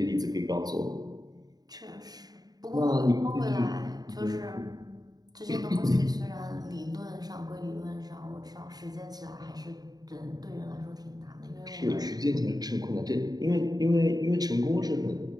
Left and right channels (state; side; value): late; left; 0.19 ms